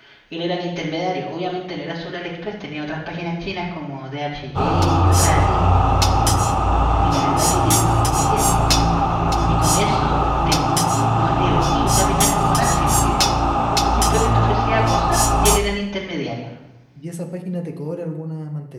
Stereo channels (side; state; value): both; identical; correlation 1.00